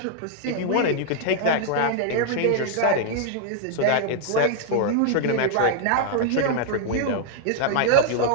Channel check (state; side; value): different; both; correlation 0.00